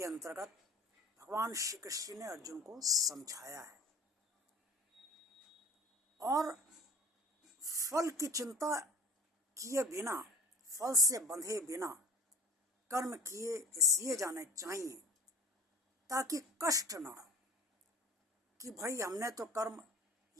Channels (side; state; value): both; normal; correlation 0.43